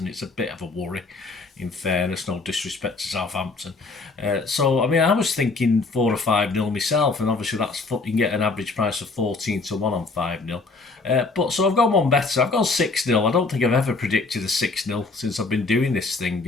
it's a bit of a worry. in fairness, no disrespect to Southampton. So, I mean, I was thinking 4 or 5-0 myself, and obviously you can get an average price of 14 to 1 on 5-0. But so I've gone one better. I've gone 6-0. I don't think I've ever predicted a 6-0 since I've been doing this thing,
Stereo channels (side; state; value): right; quieter; 3.8 dB